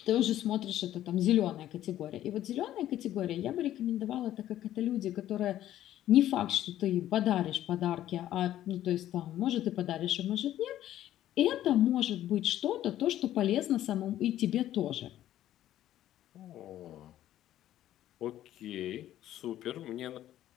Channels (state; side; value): quieter; right; 12.7 dB